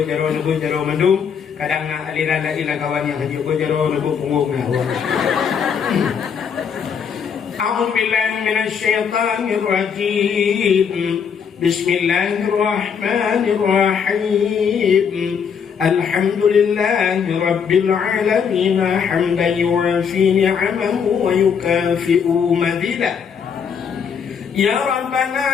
mendung, kadang aliran ilah kawan yang hanya berjaro punggung A'udzu billahi minasy syaithanir rajim. Bismillahirrahmanirrahim. Alhamdulillahi rabbil alamin hamdan yuwafi ni'amahu wa yukafi'u madidah. Ya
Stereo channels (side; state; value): right; quieter; 6.9 dB